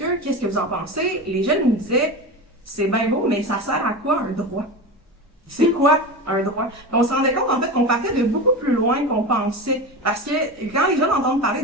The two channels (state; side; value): normal; both; correlation 0.25